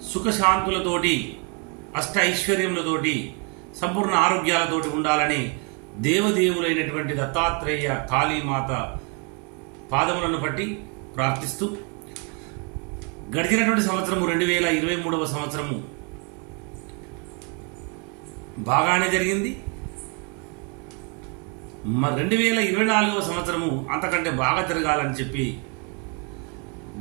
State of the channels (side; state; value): left; quieter; 35.4 dB